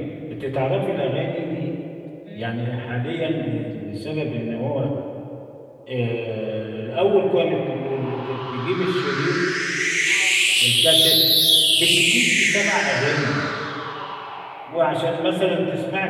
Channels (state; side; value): identical; both; correlation 1.00